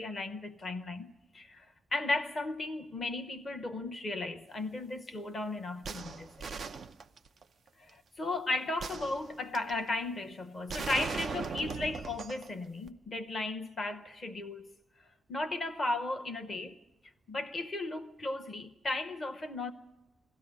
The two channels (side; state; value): both; normal; correlation 0.79